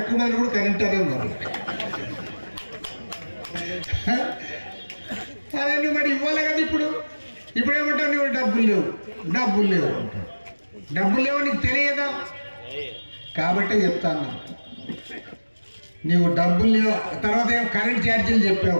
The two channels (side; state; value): both; inverted; correlation -1.00